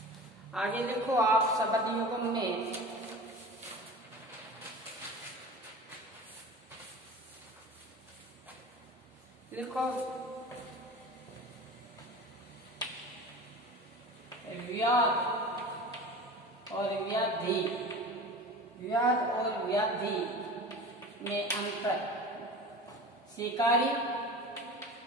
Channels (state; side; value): normal; both; correlation 0.35